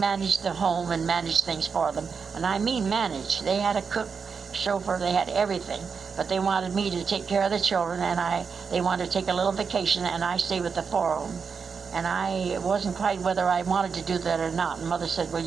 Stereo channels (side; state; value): left; quieter; 5.7 dB